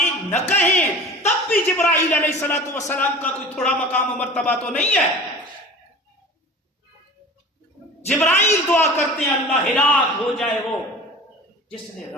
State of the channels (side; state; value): both; normal; correlation 0.38